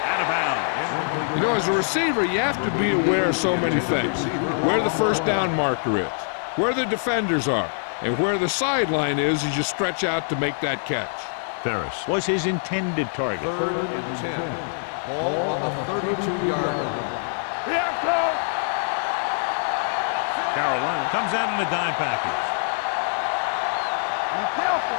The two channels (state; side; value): silent; right; 63 dB below the other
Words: out of bounds. You know, as a receiver, you have to be aware of so many things. Where the first down marker is, where the defenders are, and where the sideline is as you stretch out to make that catch. Ferris was his intended target. Third and 10. Ball on the 32-yard line. Carolina comes out in a dime package.